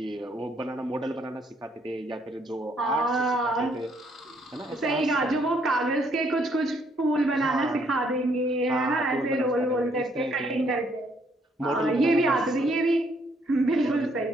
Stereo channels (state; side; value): normal; both; correlation 0.69